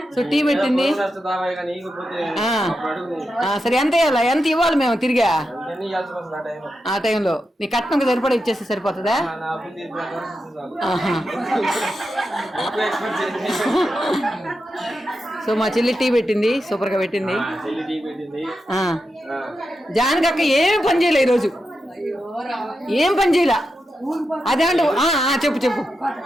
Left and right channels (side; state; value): both; normal; correlation 0.88